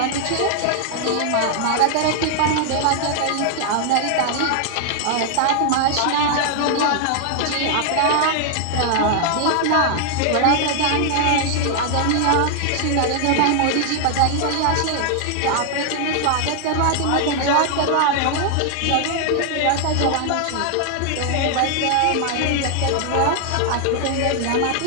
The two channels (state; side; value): different; both; correlation 0.00